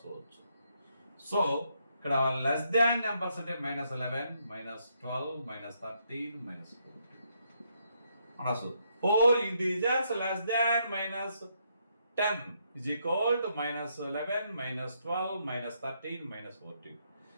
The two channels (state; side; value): inverted; both; correlation -0.75